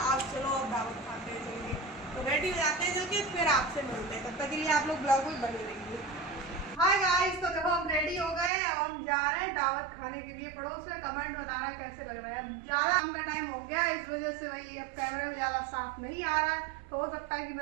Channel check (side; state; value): left; drops out; at 8.5 s